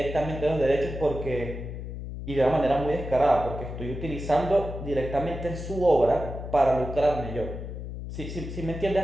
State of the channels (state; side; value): noise; left; hum, 8 dB below the sound